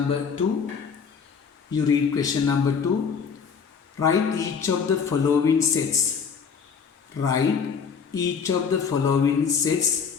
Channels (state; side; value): quieter; right; 6.2 dB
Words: 2. You read question number 2. Write each of the following sets. Write each of the following